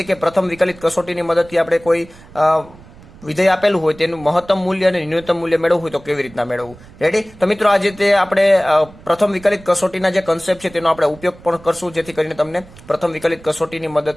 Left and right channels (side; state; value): right; noise; rumble, 21 dB below the sound